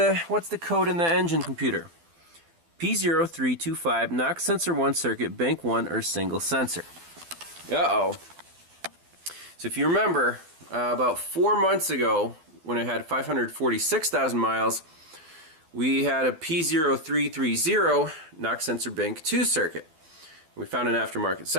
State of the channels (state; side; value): late; left; 12 ms